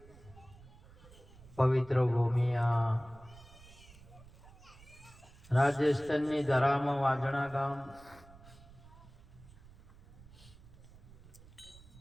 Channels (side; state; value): right; noise; rumble, 21 dB below the sound